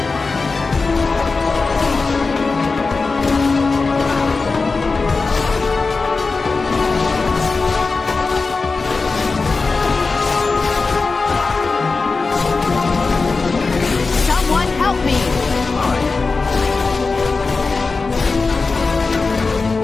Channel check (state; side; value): quieter; right; 4.1 dB